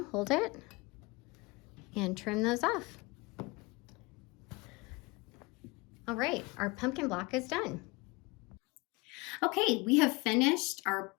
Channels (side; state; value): right; quieter; 25.1 dB